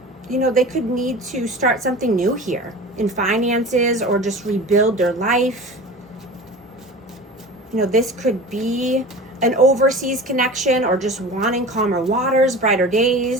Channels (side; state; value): both; normal; correlation 0.35